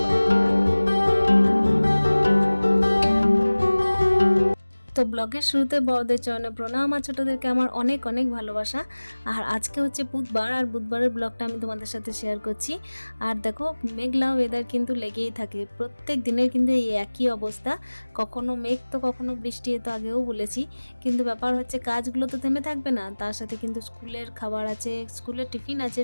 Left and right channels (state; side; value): inverted; both; correlation -1.00